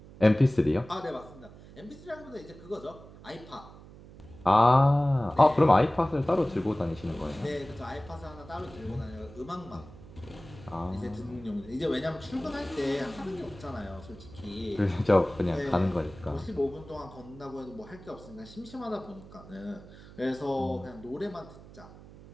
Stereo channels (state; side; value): noise; right; hum, 19 dB below the sound